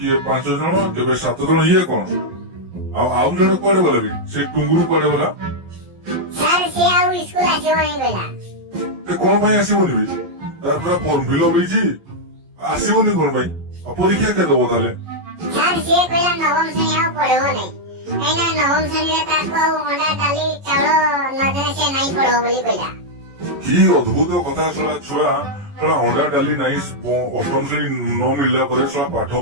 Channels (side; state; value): left; late; 11 ms